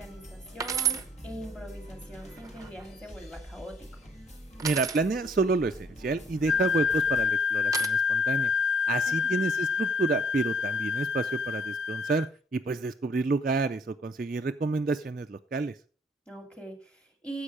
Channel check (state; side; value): normal; both; correlation 0.63